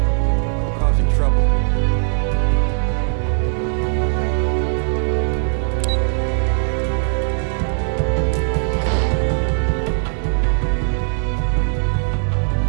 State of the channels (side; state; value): left; silent; 66 dB below the other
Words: Don't go causing trouble.